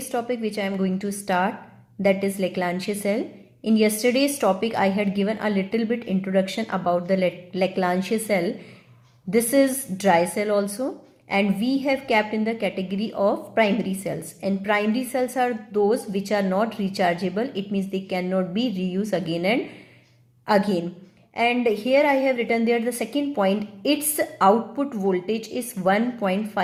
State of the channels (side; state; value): both; identical; correlation 1.00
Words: topic which I am going to start, that is Leclanche cell. In yesterday's topic I had given a little bit introduction about the Leclanche cell. This is dry cell also, and we have kept in the category of primary cells, and primary cells are those which are not rechargeable. It means they cannot be reused again and again. And here I have written there the second point, its output voltage is